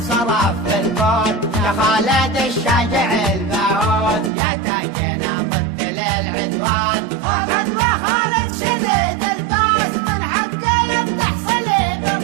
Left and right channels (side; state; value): left; drops out; at 4.3 s